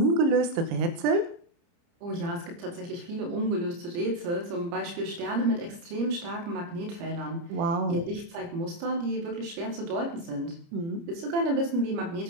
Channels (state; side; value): late; left; 29 ms